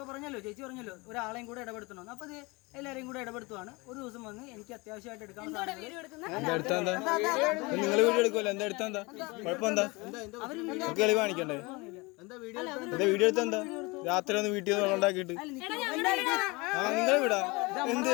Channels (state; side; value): quieter; right; 25.3 dB